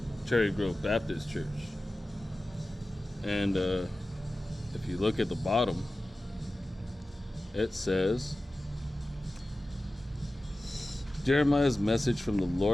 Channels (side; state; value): both; normal; correlation 0.95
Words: Cherry Grove Baptist Church. And if you look at the bottom, it says, Jeremiah's message from the